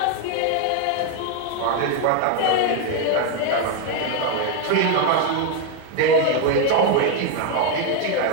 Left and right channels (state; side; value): different; both; correlation 0.01